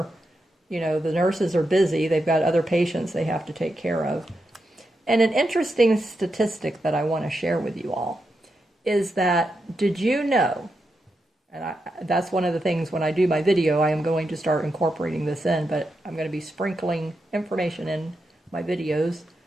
The nurses are busy. They've got other patients they have to take care of. And an interesting statistic that I want to share with you all is that, did you know, and that's one of the things when I do my video, I am going to start incorporating this in, but I'm going to be sprinkling information in my videos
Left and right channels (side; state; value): both; normal; correlation 0.86